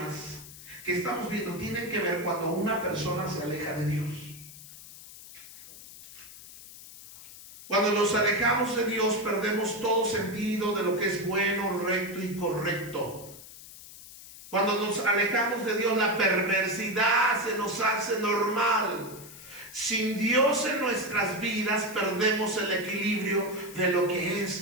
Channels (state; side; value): noise; left; hiss, 17 dB below the sound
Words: que estamos viendo tienen que ver cuando una persona se aleja de Dios. Cuando nos alejamos de Dios, perdemos todo sentido de lo que es bueno, recto y correcto. Cuando nos alejamos de Dios, la perversidad se nos hace normal. Sin Dios en nuestras vidas, perdemos el equilibrio de lo que